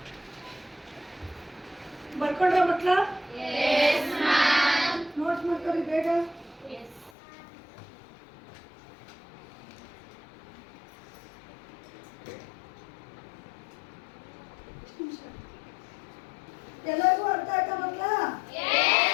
ಬರ್ಕೊಂಡ್ರ ಮಕ್ಕಳ? ನೋಟ್ಸ್ ಮಾಡ್ಕೊಳ್ಳಿ ಬೇಗ. ಎಲ್ಲರಿಗೂ ಅರ್ಥ ಆಯ್ತಾ ಮಕ್ಕಳ?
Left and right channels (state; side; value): drops out; right; at 7.1 s